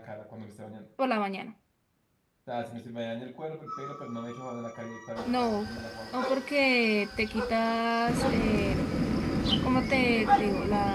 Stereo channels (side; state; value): both; identical; correlation 1.00